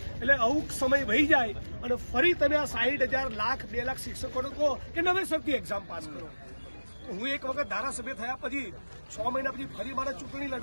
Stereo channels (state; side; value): inverted; both; correlation -1.00